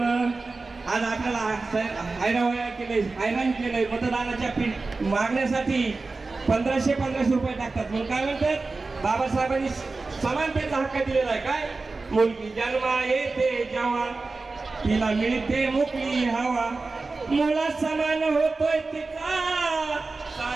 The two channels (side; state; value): left; quieter; 3.8 dB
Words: आज आपल्याला हैराण केलंय मतदानाच्या मागण्यासाठी 1500 रुपये टाकतात म्हणून काय म्हणतात बाबासाहेबांनी समानतेचा हक्क दिलेला आहे। काय मुलगी जन्मा येते जेव्हा तिला मिळते मोकळी हवा, मुला समान होतोय तिचा